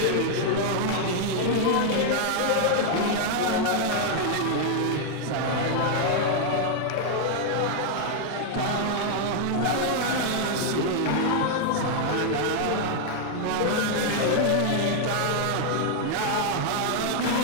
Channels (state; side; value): different; both; correlation 0.00